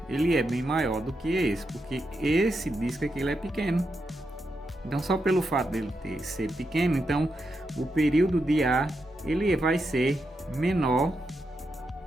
ele é bem maior do que esse, porque esse disco aqui ele é pequeno. Então só pelo fato dele ser pequeno, então o período de A ele vai ser menor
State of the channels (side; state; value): both; normal; correlation 0.85